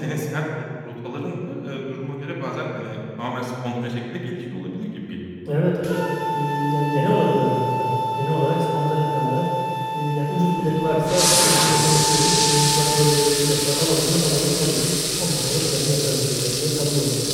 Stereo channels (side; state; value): both; identical; correlation 1.00